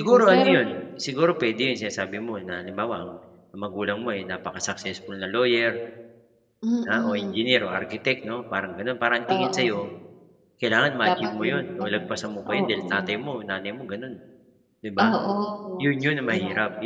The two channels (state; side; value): identical; both; correlation 1.00